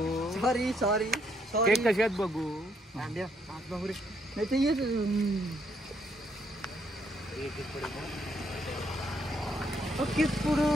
सॉरी केक कसे आहेत बघू नाही ते येत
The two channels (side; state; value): both; normal; correlation 0.72